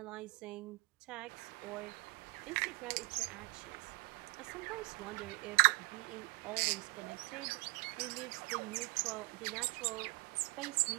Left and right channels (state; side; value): quieter; left; 26.3 dB